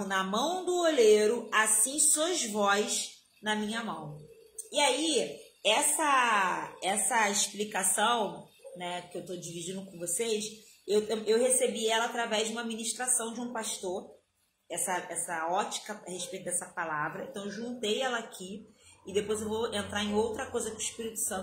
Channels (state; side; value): identical; both; correlation 1.00